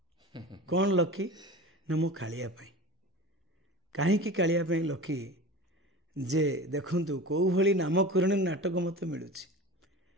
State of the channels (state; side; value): normal; both; correlation 0.34